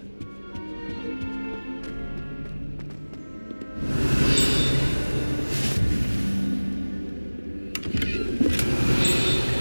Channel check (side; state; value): both; inverted; correlation -1.00